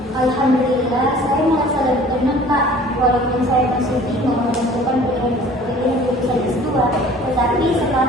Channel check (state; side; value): normal; both; correlation 0.49